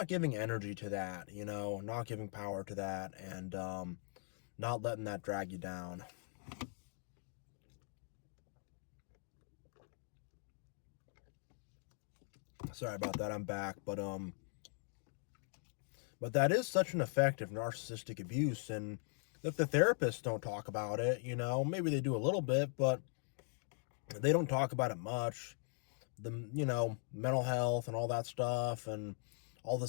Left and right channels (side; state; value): right; silent; 51 dB below the other